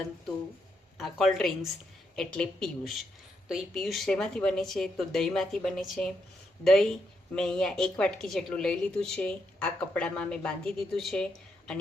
આ કોલ્ડ ડ્રિંક્સ એટલે પિયુષ. તો એ પિયુષ શેમાંથી બને છે? તો દહીંમાંથી બને છે. દહીં મેં અહીંયા 1 વાટકી જેટલું લઈ લીધું છે. આ કપડામાં મેં બાંધી દીધું છે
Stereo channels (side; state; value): both; normal; correlation 0.79